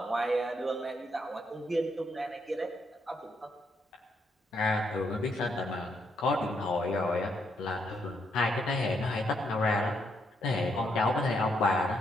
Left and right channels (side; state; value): both; normal; correlation 0.76